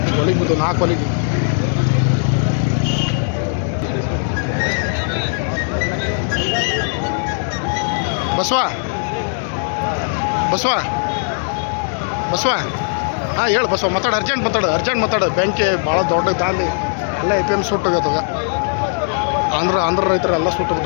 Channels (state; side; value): silent; right; digital silence